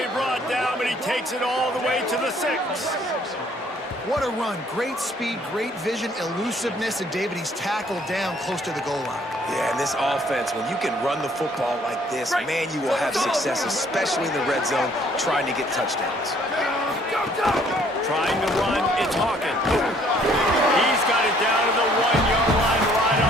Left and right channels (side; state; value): both; normal; correlation 0.61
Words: brought down, but he takes it all the way to the 6. What a run. Great speed, great vision, elusiveness, and David, he's tackled down close to the goal line. Yeah, and this offense, when you can run the football like this, man, you will have success, especially in the red zone, trying to get touchdowns. Trying to run, it's Hawkins. He's got it down to the 1-yard line, right